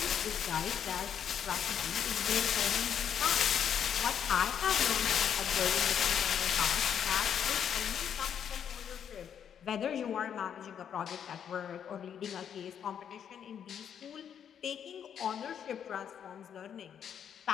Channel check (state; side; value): quieter; right; 8.5 dB